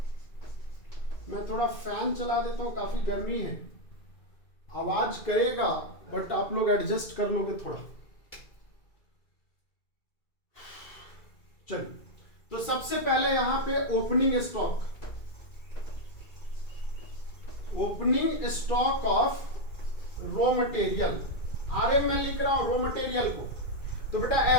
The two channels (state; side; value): late; right; 2.3 ms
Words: मैं थोड़ा फैन चला देता हूं, काफी गर्मी है, आवाज करेगा बट आप लोग एडजस्ट कर लोगे थोड़ा। चलिए, तो सबसे पहले यहां पे opening stock, opening stock of raw material, RM में लिख रहा हूं रॉ मटेरियल को। तो बेटा